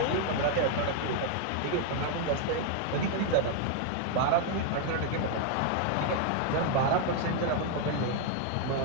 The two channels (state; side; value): different; both; correlation 0.00